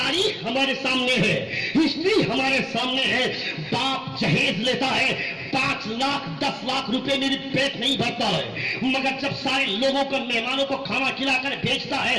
ہمارے سامنے ہے، ہسٹری ہمارے سامنے ہے، باپ جہیز لیتا ہے 5 لاکھ 10 لاکھ روپے میری پیٹ نہیں بھرتا ہے، مگر جب سارے لوگوں کو مہمانوں کو کھانا کھلا کر بھیجتا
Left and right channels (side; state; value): both; identical; correlation 1.00